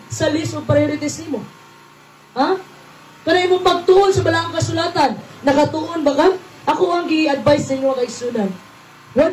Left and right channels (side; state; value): both; identical; correlation 1.00